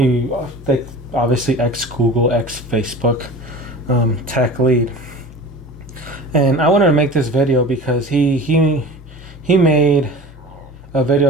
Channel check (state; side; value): normal; both; correlation 0.37